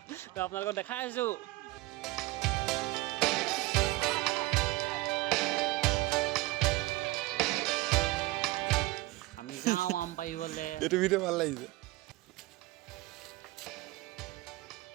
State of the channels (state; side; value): quieter; left; 20.3 dB